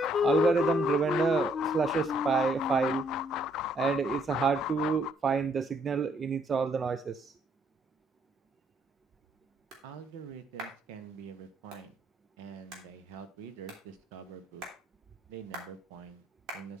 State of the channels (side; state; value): both; normal; correlation 0.69